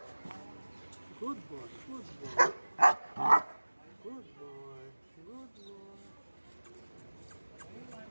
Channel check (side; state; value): both; inverted; correlation -1.00